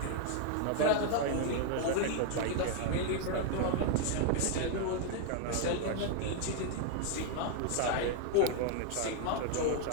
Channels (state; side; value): different; both; correlation 0.00